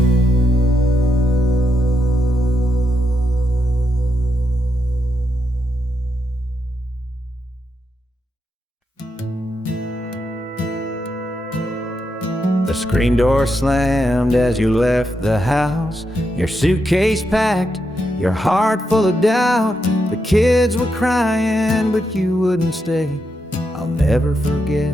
The screen door slammed as you left the house, your suitcase packed, your heart full of doubt. The kids were crying, but you wouldn't stay. I'll never forget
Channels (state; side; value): normal; both; correlation 0.83